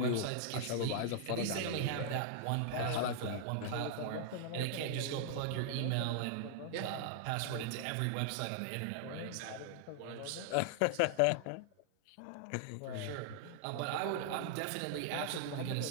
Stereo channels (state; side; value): different; both; correlation -0.01